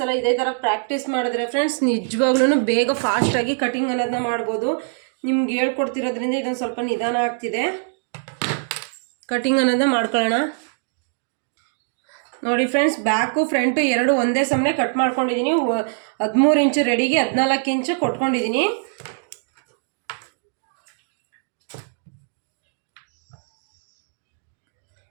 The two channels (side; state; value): left; silent; digital silence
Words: ಇದೇ ಥರ ಪ್ರಾಕ್ಟೀಸ್ ಮಾಡಿದ್ರೆ ಫ್ರೆಂಡ್ಸ್, ನಿಜವಾಗ್ಲೂ ಬೇಗ ಫಾಸ್ಟಾಗಿ ಕಟಿಂಗ್ ಅನ್ನೋದನ್ನ ಮಾಡ್ಬೋದು. ನಿಮ್ಗೆ ಹೇಳ್ಕೊಡ್ತಿರೋದ್ರಿಂದ ಇದೊಂದು ಸ್ವಲ್ಪ ನಿಧಾನ ಆಗ್ತಿದೆ. ಕಟಿಂಗ್ ಅನ್ನೋದನ್ನ ಮಾಡ್ಕೊಳ್ಳೋಣ. ನೋಡಿ ಫ್ರೆಂಡ್ಸ್, ಬ್ಯಾಕು ಫ್ರಂಟು ಎರಡು ಒಂದೇ ಸಮನೆ ಕಟ್ ಮಾಡ್ಕೊಂಡಿದ್ದೀನಿ. 13 ಇಂಚು ರೆಡಿಗೆ 14 ಇಂಚು ಕೊಟ್ಕೊಂಡಿದ್ದೀನಿ.